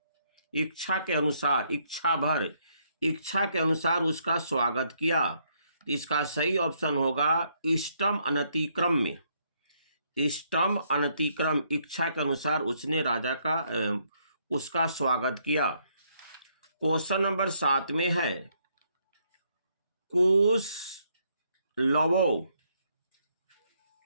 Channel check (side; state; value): both; inverted; correlation -0.72